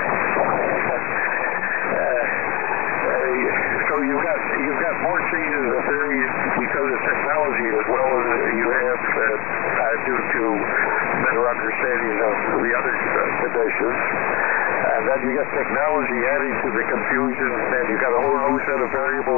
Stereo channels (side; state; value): right; quieter; 23.8 dB